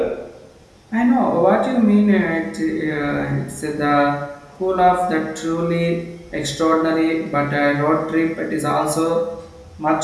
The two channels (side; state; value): both; identical; correlation 1.00